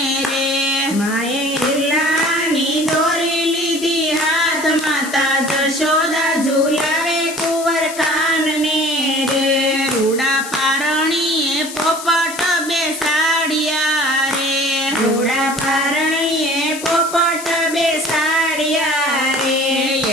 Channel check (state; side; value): noise; left; hiss, 11 dB below the sound